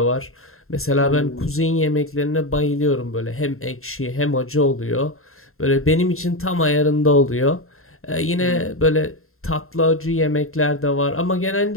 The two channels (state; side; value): late; right; 0.62 ms